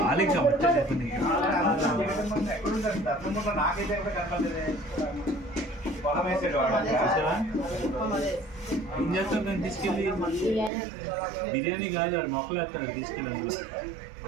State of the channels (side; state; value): left; drops out; at 10.7 s